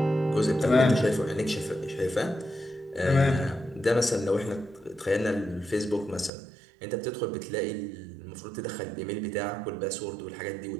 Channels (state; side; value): drops out; left; at 6.3 s